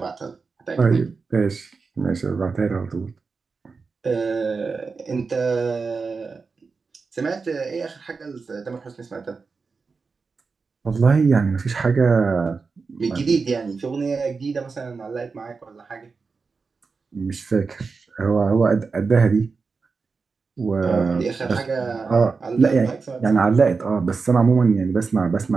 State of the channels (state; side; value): quieter; left; 4.7 dB